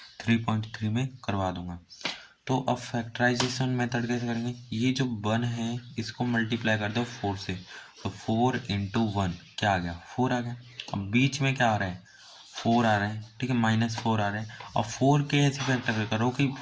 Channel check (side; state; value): both; identical; correlation 1.00